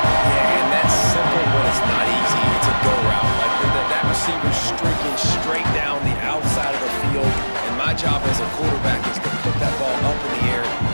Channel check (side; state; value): both; inverted; correlation -1.00